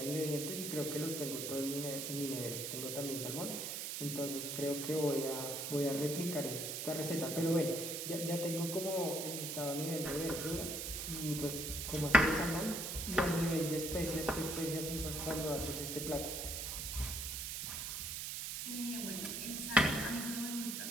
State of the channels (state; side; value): noise; right; hiss, 4 dB below the sound